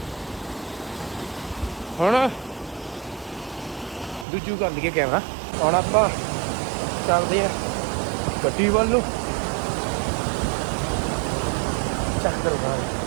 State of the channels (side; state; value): left; drops out; at 4.2 s